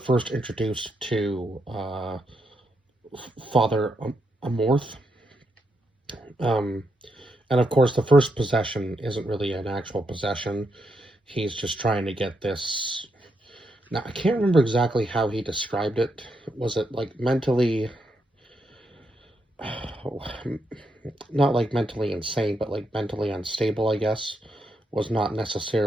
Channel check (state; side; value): normal; both; correlation 0.81